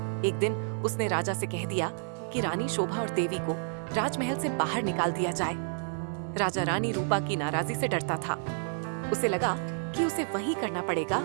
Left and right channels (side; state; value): left; silent; 57 dB below the other